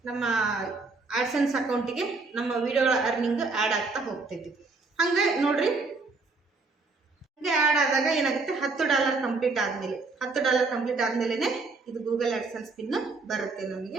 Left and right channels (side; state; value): left; quieter; 3.9 dB